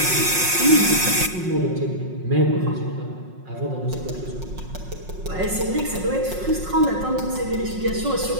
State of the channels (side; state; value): left; late; 5.5 ms